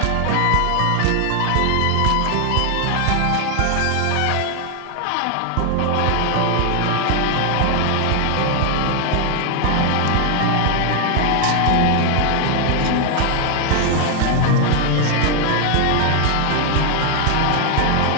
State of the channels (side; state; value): both; different; correlation 0.01